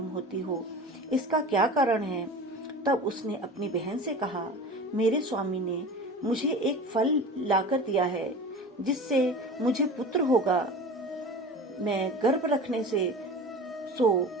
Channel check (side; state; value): both; normal; correlation 0.35